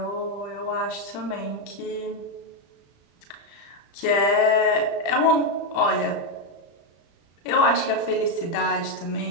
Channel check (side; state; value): right; late; 35 ms